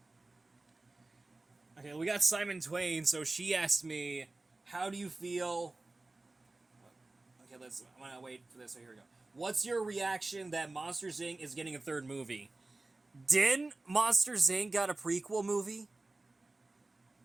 Okay, we got Simon Twain, so she asked me, how do you feel... Okay, I'm gonna wait for this, so here we go. What's your reaction that Monsters, Inc. is getting a third movie? Didn't Monsters, Inc. got a prequel movie?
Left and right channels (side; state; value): left; quieter; 3.1 dB